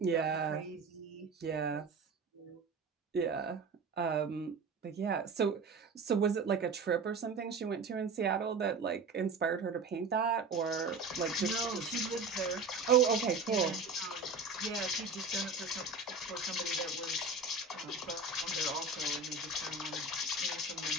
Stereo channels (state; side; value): quieter; left; 4.0 dB